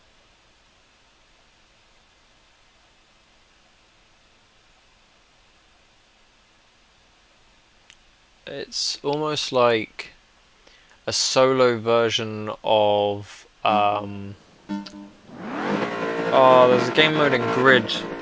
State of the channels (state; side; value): identical; both; correlation 1.00